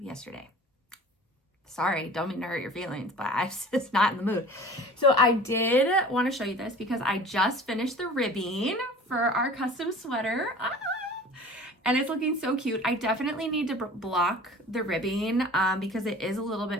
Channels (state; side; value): normal; both; correlation 0.43